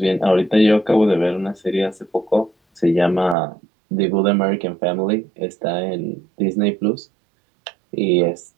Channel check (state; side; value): drops out; left; at 3.4 s